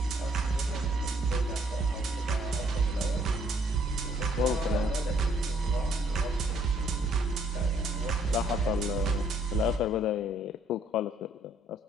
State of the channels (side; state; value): both; normal; correlation 0.65